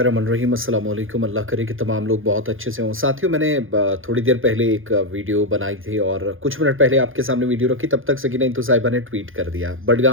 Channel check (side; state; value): left; late; 0.59 ms